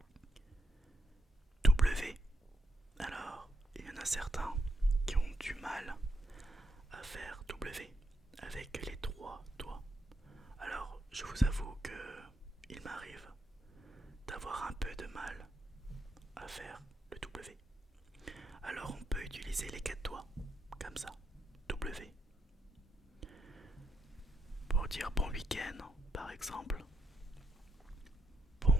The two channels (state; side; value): normal; both; correlation 0.80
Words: W. Alors, il y en a certains qui ont du mal à faire W avec les trois doigts. Alors, je vous avoue que il m'arrive d'avoir un peu de mal à faire le W. Alors, on peut utiliser les quatre doigts, comme ça, W. Pour dire bon week-end, par exemple.